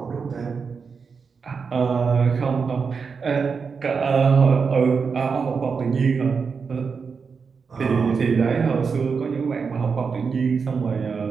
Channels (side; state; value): left; quieter; 5.5 dB